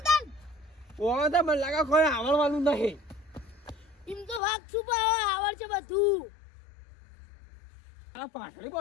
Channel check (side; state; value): right; drops out; at 4.4 s